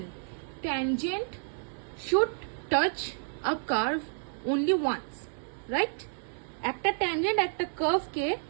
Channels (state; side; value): silent; left; 57 dB below the other